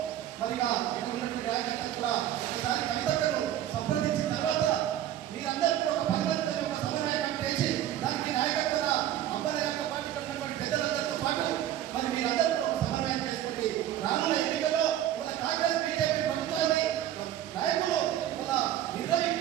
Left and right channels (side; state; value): left; quieter; 11.9 dB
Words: మరి ఇక్కడ ఉన్నటువంటి రాజకీయాలు కూడా ఒకసారి కవితను సంప్రదించిన తర్వాత మీరందరూ కూడా ఒక 10 మందితో ఒక సమన్వయం చేసి దానికి నాయకత్వ అబ్బాయి యొక్క పార్టీ ఉన్నటువంటి పెద్దలందరితో పాటు మరి మీరందరూ కూడా ఒక సమన్వయం చేసుకుంటే రానున్న ఎన్నికల్లో మన కాంగ్రెస్ బీజేపీ ప్రభుత్వాన్ని నాయకులు మన